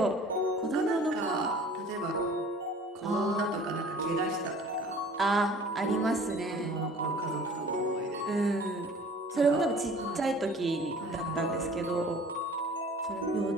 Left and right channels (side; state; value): both; normal; correlation 0.47